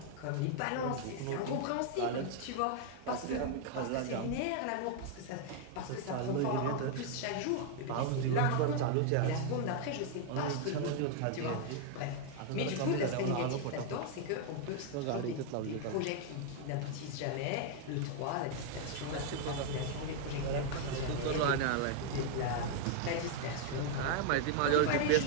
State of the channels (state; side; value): different; both; correlation 0.00